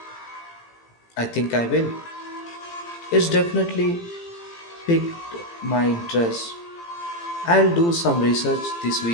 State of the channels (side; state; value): right; late; 18 ms